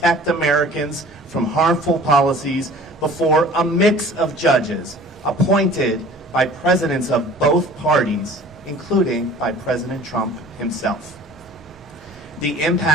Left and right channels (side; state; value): both; normal; correlation 0.47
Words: Americans from harmful policies before a mix of judges appointed by presidents of both parties, including by President Trump himself. The